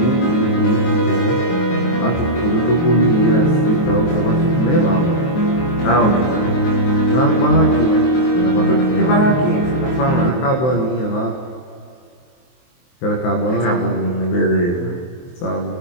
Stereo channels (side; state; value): right; late; 23 ms